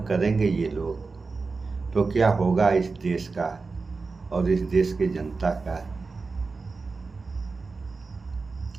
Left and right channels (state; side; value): quieter; left; 4.2 dB